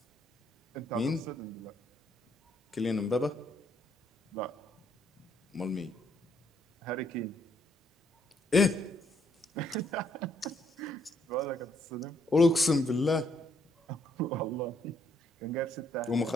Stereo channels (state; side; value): normal; both; correlation 0.71